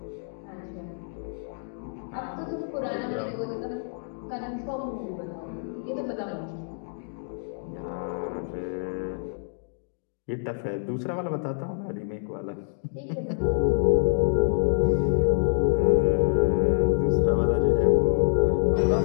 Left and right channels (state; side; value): silent; right; digital silence